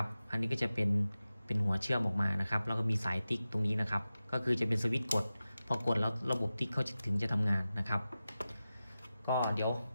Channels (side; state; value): both; inverted; correlation -0.94